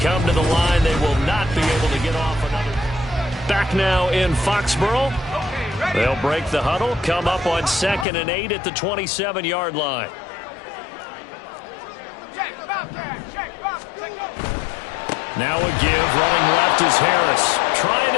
to the line, they will not be able to get off another. Back now in Foxborough. They'll break the huddle, come up on 2nd and 8 at the 27-yard line. Now a give, running left is Harris. Trying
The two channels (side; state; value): right; drops out; at 8.1 s